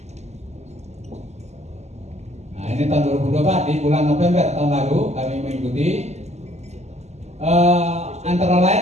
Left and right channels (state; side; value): late; left; 0.33 ms